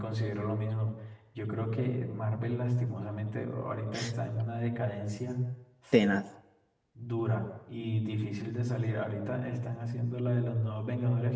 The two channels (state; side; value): identical; both; correlation 1.00